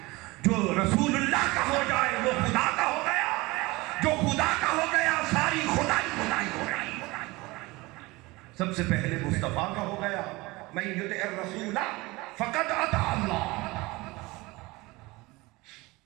جو رسول اللہ کا ہو جائے وہ خدا کا ہو گیا، جو خدا کا ہو گیا ساری خدائی ہو گئی۔ سب سے پہلے مصطفیٰ کا ہو گیا، من یطع الرسول فقد اطاع اللہ۔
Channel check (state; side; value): quieter; left; 22.3 dB